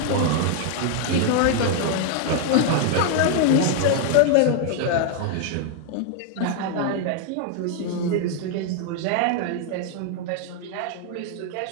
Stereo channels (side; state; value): both; different; correlation 0.00